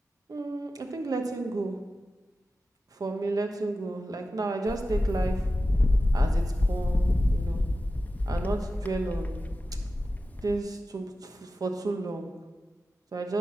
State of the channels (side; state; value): both; normal; correlation 0.93